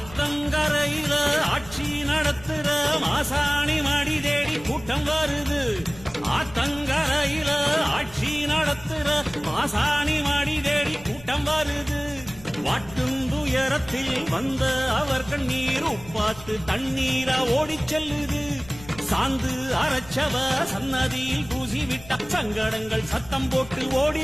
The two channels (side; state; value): left; noise; rumble, 19 dB below the sound